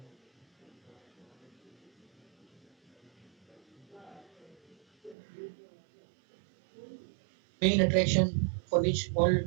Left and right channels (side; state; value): left; drops out; at 5.2 s